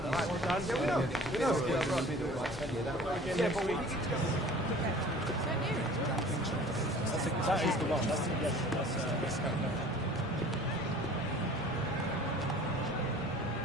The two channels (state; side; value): normal; both; correlation 0.46